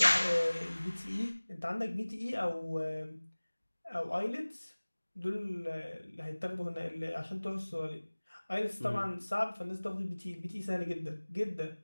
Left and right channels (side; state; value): both; inverted; correlation -1.00